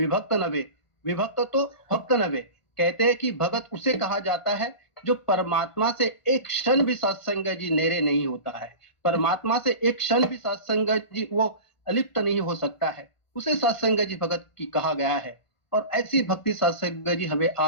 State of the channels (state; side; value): late; right; 1.4 ms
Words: नवे, विभक्त तो भक्त नवे। कहते हैं कि भगत उसे कहा जाता है जो परमात्मा से एक क्षण भी सत्संग जी नेरे नहीं होता है, परमात्मा से एक क्षण भी सत्संग जी वो अलिप्त नहीं हो सकता है, उसे सत्संग जी भगत की कहा गया है। और ऐसी भक्ति सत्संग जी हमें